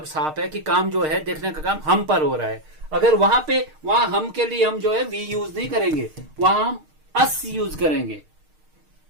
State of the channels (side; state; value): left; late; 6.5 ms